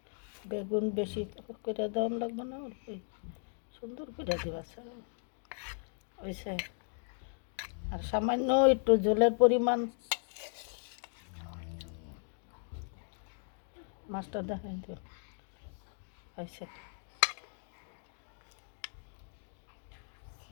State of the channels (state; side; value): silent; right; 53 dB below the other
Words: বেগুন বেশি করে দেওয়া লাগবে না, অল্পই সুন্দর করে দিবা হয়েছে। আর সামান্য একটু জলের পরিমাণ, মাছটা দেখাই দিও হয়েছে।